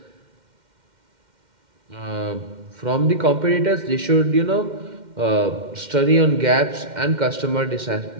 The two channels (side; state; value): left; late; 2.1 ms